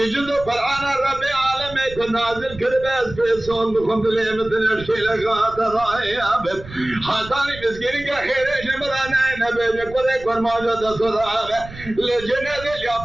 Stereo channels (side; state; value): right; noise; rumble, 16 dB below the sound